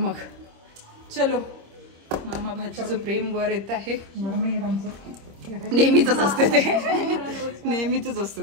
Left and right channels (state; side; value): late; left; 26 ms